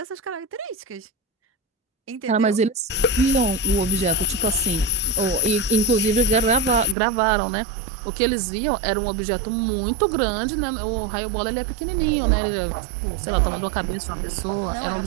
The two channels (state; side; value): drops out; left; at 7.0 s